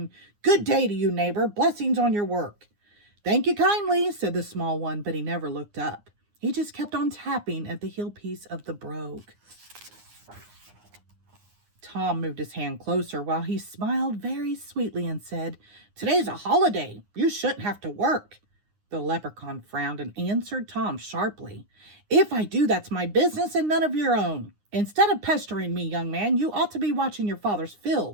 "Good day to you, neighbor. Blessings on your work." "Thank you kindly," said the small one, but he never looked up. He just kept on tapping at the heel piece of the brogue. Tom moved his hand closer while he smiled very sweetly and said, "Today's a holiday. You shouldn't have to work." The leprechaun frowned and answered Tom sharply, "If I do, that's my business and none of your own. Instead of pestering me, young man, you ought to be watching your father's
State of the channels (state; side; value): late; left; 9.7 ms